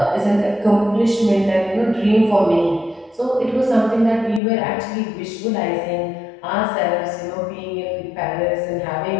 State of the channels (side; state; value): right; drops out; at 4.4 s